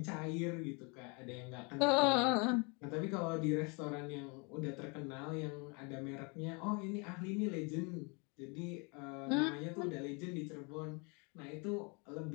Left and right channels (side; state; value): right; quieter; 32.3 dB